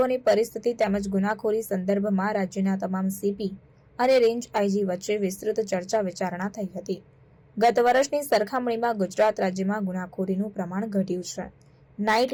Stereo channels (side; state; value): both; identical; correlation 1.00